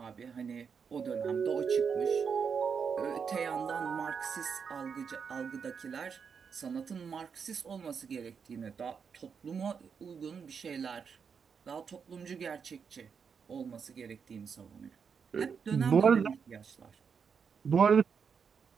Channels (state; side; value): quieter; left; 6.3 dB